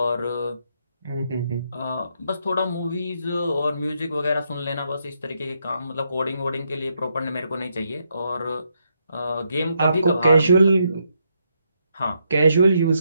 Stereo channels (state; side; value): inverted; both; correlation -0.78